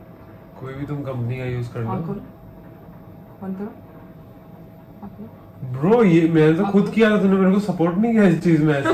कोई भी तुम कंपनी का यूज कर आँख लो. खोलो. बंद करो. आँख खोलो. ब्रो ये मैंने तो खुद किया था, तूने मेरे को सपोर्ट नहीं किया इस चीज में ऐसे.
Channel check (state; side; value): identical; both; correlation 1.00